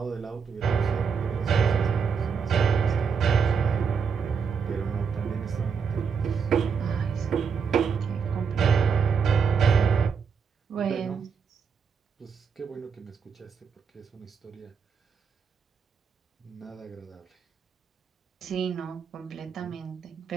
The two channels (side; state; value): left; quieter; 6.2 dB